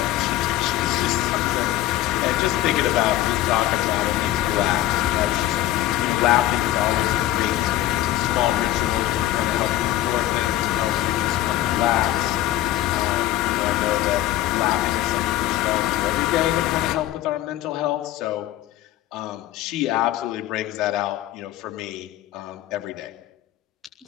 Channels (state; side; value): quieter; right; 14.3 dB